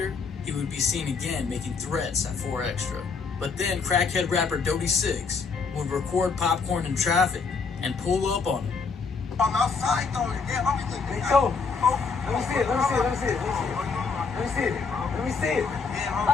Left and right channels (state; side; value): quieter; right; 5.0 dB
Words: he would be seen again making threats at 4Extra. But then crackhead rapper Dodie 6 would record PopKorn in traffic and pull up on him. I'm outside throwing it. Yeah, let me see it. Let me see it. Let me see it. Let me see it. Let me see it.